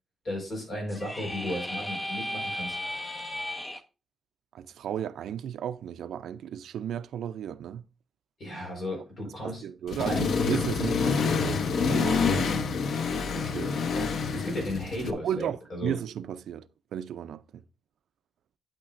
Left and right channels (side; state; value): both; normal; correlation 0.70